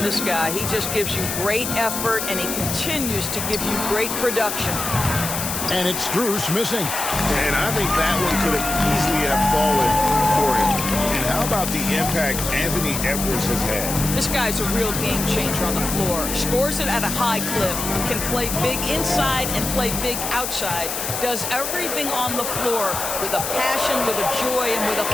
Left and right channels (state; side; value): noise; left; hiss, 4 dB below the sound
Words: this guy. He just gives you great effort, and he continues to give you great production. And it's Strus missing. And I think that one could have easily have fallen for him. And how about the impact Anthony Edwards has had? This guy's a real game changer on the floor. Scores it at a high clip. Can play big inside and play big outside. Does everything on the floor with a passion, with a joy, and with a